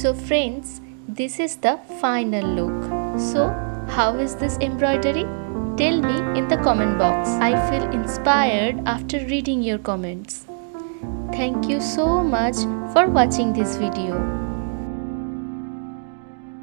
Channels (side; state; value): left; silent; digital silence